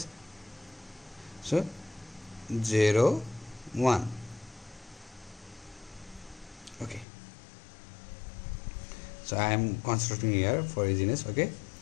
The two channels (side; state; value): right; drops out; at 7.1 s